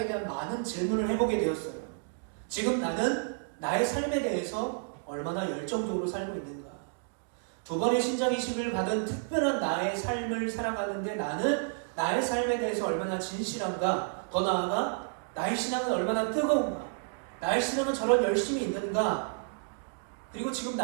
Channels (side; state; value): left; silent; digital silence